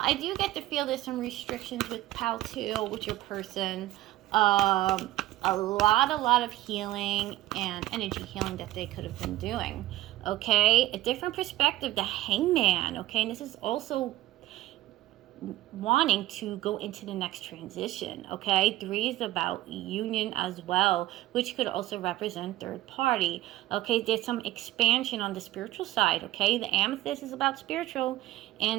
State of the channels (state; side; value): quieter; left; 15.9 dB